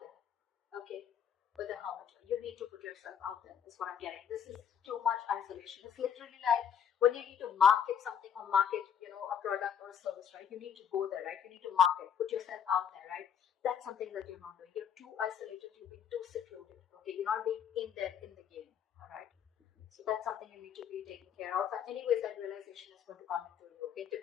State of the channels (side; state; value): right; quieter; 8.3 dB